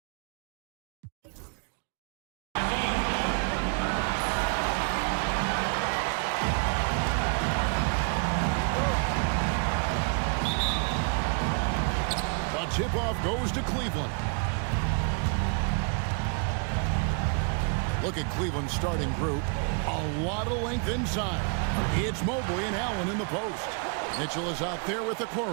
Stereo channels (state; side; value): quieter; left; 37.9 dB